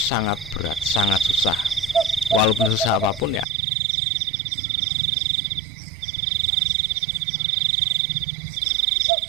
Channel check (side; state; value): left; drops out; at 3.5 s